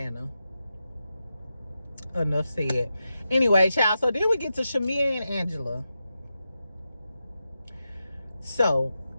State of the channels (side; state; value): both; inverted; correlation -0.89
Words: Enough said. Anyway, child, so then we get to Shamia and Angela. So